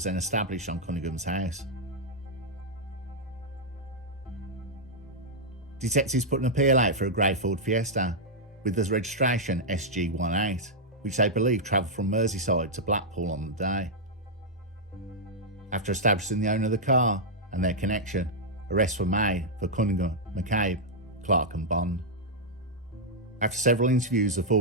then established on Cunningham's house. Detectives put an appeal out for a grey Ford Fiesta with the registration SG18, which they believe travelled from Merseyside to Blackpool on the day. After establishing the owner of the car and their connection, arrests were made for Cunningham, McCabe, Clark and Bond. After several interviews, the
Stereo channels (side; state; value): both; normal; correlation -0.05